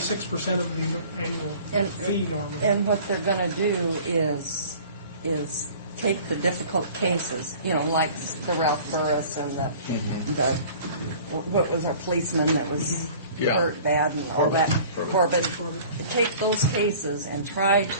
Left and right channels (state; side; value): inverted; both; correlation -0.47